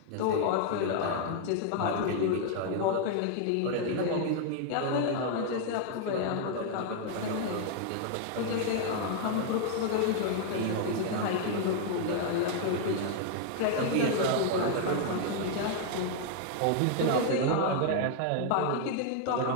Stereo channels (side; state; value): both; different; correlation 0.00